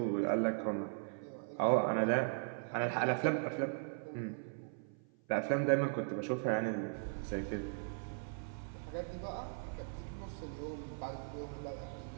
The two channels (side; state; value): left; silent; 52 dB below the other